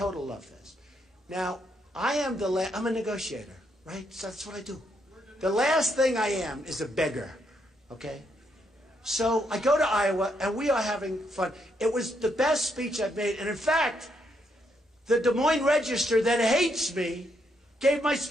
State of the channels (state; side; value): normal; both; correlation 0.76